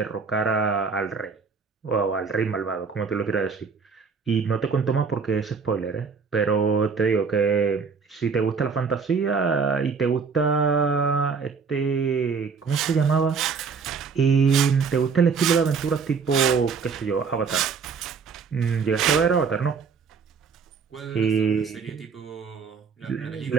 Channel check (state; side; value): quieter; left; 5.4 dB